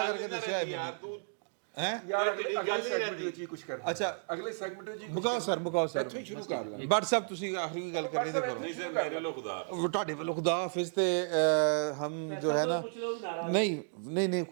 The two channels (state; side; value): silent; left; digital silence